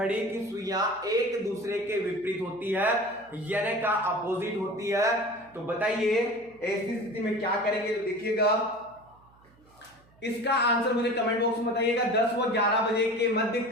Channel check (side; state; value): right; noise; hum, 29 dB below the sound